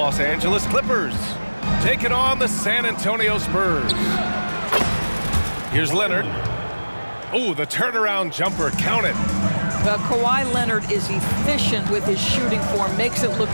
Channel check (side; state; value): both; inverted; correlation -1.00